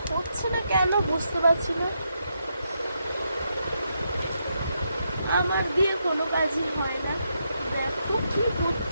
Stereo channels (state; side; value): inverted; both; correlation -0.81